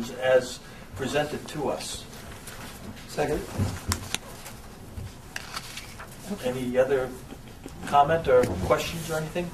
as presented to us. Second. Any other comment or questions or anything?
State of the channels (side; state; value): both; identical; correlation 1.00